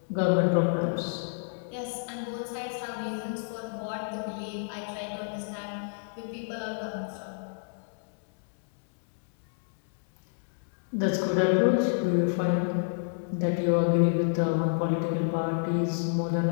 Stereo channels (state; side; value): silent; right; digital silence